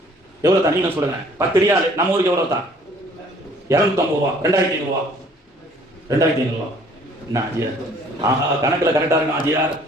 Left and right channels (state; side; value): normal; both; correlation 0.57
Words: எவ்வளவு தான் நீங்க சொல்லுங்க. 10 ரியால் நம்ம ஊருக்கு எவ்வளவு தான், 250 ரூபா. 2500 ரூபா, 2500 ரூபா. என்ன ஆஜியார், ஆஹா கணக்குல கரெக்டா இருக்கும் ஆஜியார்.